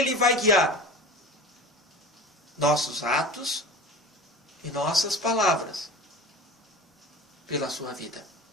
vai guiar nossos atos e nossas palavras pela sua vida.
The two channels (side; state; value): both; normal; correlation 0.35